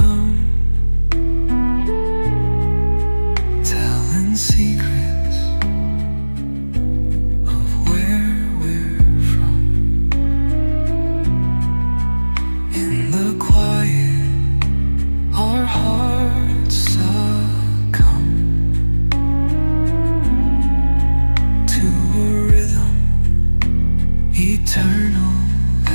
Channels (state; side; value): inverted; both; correlation -1.00